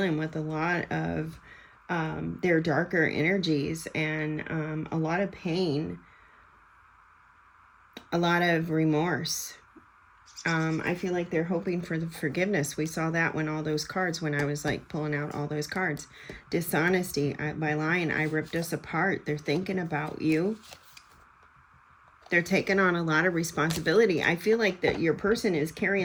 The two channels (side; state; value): both; identical; correlation 1.00